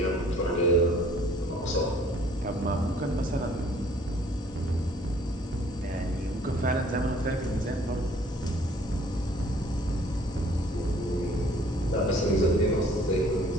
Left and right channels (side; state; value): both; normal; correlation 0.57